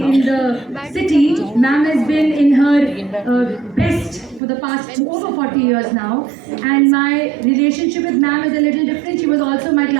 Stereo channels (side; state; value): left; drops out; at 4.4 s